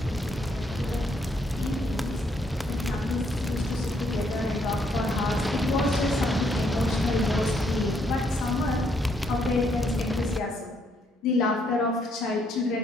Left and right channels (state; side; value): normal; both; correlation 0.71